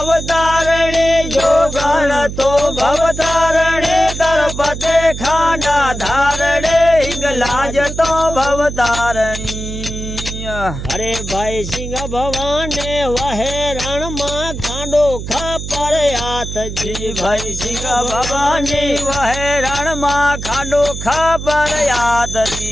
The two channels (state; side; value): noise; right; hum, 8 dB below the sound